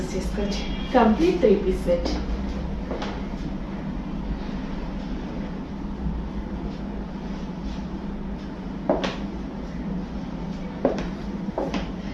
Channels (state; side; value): identical; both; correlation 1.00